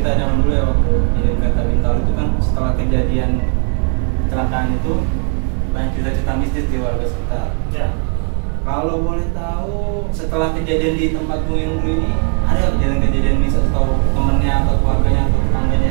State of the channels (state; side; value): quieter; left; 38.3 dB